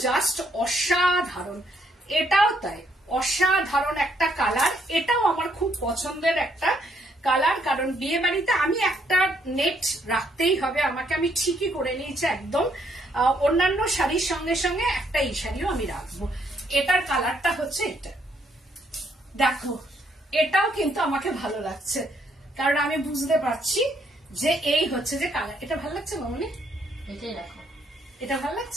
জাস্ট অসাধারণ, এটাও তাই অসাধারণ একটা কালার। এটাও আমার খুব পছন্দের একটা কালার, কারণ বিয়ে বাড়িতে আমি একটা নেট রাখতেই হবে আমাকে, আমি ঠিকই করে নিয়েছি একদম। অন্যান্য শাড়ির সঙ্গে সঙ্গে একটা এই শাড়িও আমি রাখবো। এটার কালারটা হচ্ছে এটা, দেখো এটাও কিন্তু আমাকে ভালো লাগছে, কারণ আমি বুঝতে পারছি যে এই হচ্ছে যে কালার। এটা ভালো লাগছে মামনি? এটাই রাখো। এটা ভালো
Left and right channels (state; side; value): normal; both; correlation 0.71